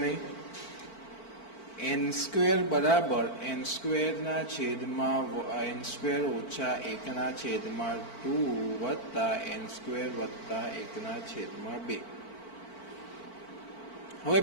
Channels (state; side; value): late; right; 4.5 ms